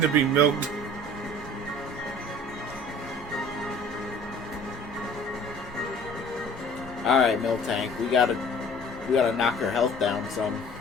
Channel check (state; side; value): normal; both; correlation 0.48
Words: to be milked. Alright, Miltank, we gotta knock her health down some.